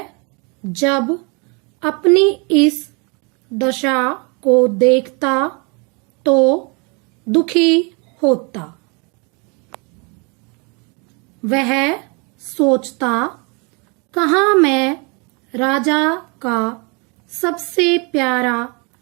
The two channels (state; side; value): quieter; left; 31.9 dB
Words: जब अपनी इस दशा को देखता तो दुखी होता। वह सोचता, कहाँ मैं राजा का सबसे प्यारा